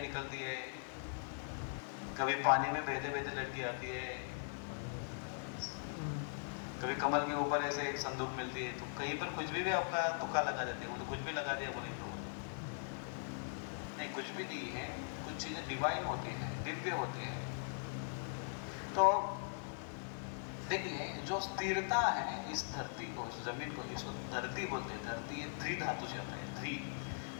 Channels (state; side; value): silent; right; 51 dB below the other